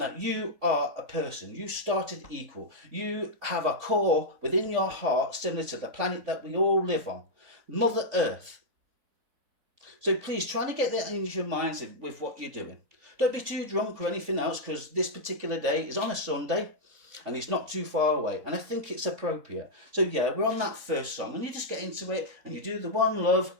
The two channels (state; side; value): late; left; 3.9 ms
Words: you are a person. You started equal. You have a core within your heart similar to the planet that we all live on, Mother Earth. So please try to get that into your minds with what you're doing. Don't be too drunk or anything else, because this particular day is on a Sunday. And it's not too far away, and I think it's appropriate. So yeah, we're on that first song, and you just get into it, and you do the one love,